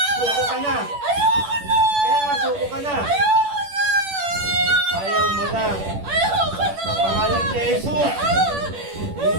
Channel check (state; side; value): late; left; 10 ms